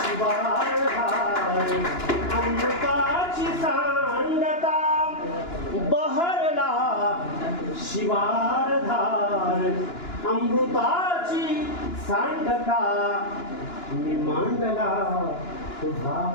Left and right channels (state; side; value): late; right; 2.9 ms